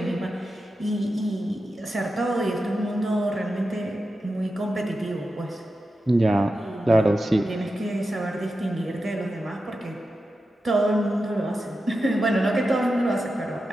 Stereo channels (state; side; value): normal; both; correlation 0.91